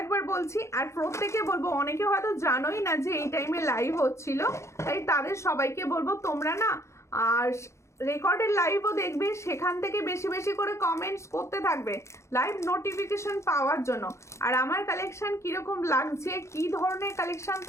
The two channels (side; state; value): right; late; 0.14 ms